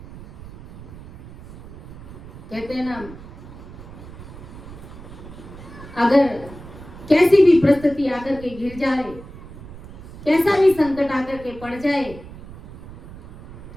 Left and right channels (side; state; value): right; noise; rumble, 15 dB below the sound